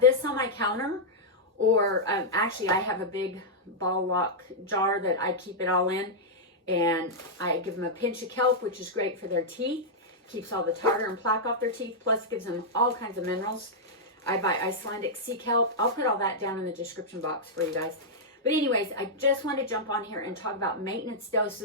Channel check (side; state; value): both; normal; correlation -0.06